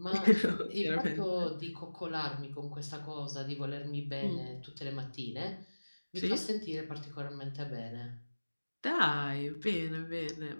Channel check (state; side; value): inverted; both; correlation -1.00